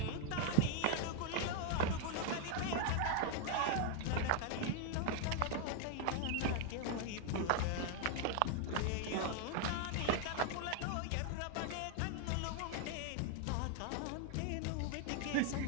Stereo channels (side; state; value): both; different; correlation 0.01